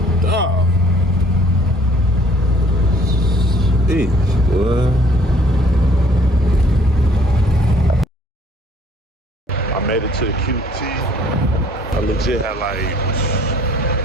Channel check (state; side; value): normal; both; correlation 0.58